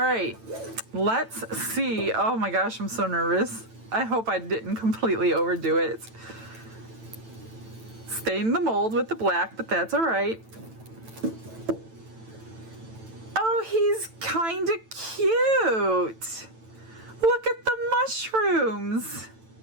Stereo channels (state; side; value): late; left; 9.0 ms